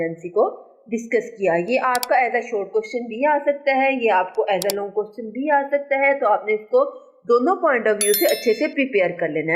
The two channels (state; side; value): identical; both; correlation 1.00